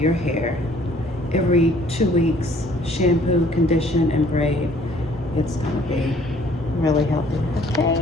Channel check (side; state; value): both; normal; correlation 0.59